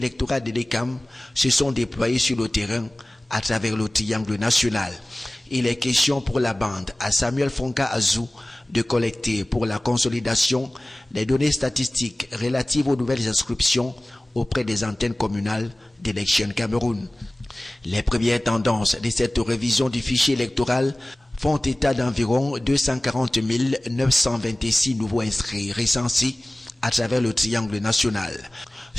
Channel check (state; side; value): normal; both; correlation 0.98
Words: de l'ECAM se sont déployés sur le terrain à travers le triangle national. Il est question pour la bande à Samuel Fonka Azou de collecter pour la consolidation des données statistiques relatives aux nouvelles inscriptions auprès des antennes communales d'Élections Cameroun. Les premières tendances de cette révision du fichier électoral font état d'environ 240 926 nouveaux inscrits recensés à travers le triangle national,